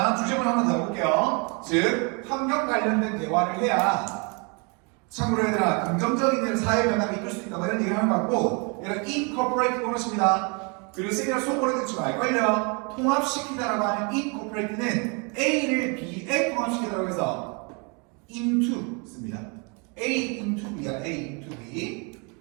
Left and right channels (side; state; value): left; quieter; 33.5 dB